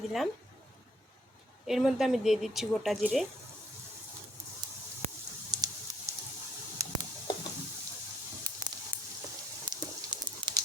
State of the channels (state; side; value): normal; both; correlation 0.67